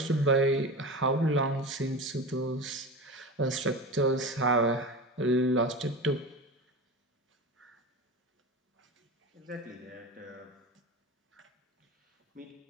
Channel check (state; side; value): normal; both; correlation 0.27